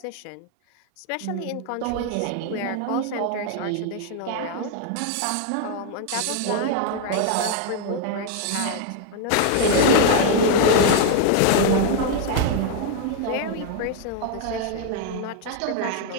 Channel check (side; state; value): both; different; correlation 0.00